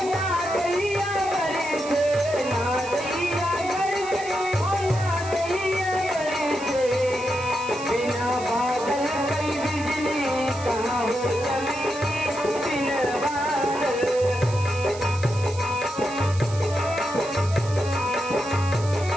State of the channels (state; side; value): noise; right; hiss, 15 dB below the sound